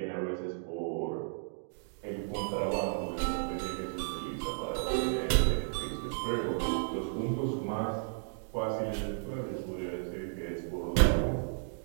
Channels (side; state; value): left; silent; digital silence